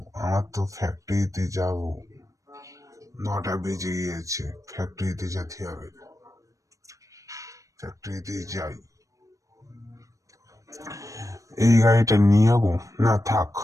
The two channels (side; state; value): left; late; 0.16 ms